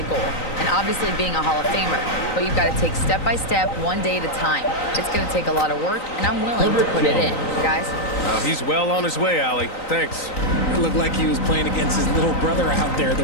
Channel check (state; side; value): late; right; 3.9 ms